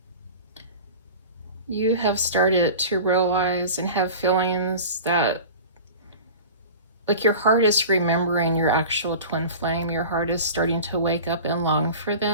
You have started to realize and have feelings that, like, your heart is remembering your actual twin flame. Your heart is starting to wake up and long for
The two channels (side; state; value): both; inverted; correlation -0.36